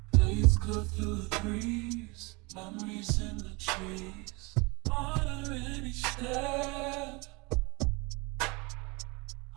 blades cut through the breeze, memories in the trees. Honor in each step,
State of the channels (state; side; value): quieter; left; 27.4 dB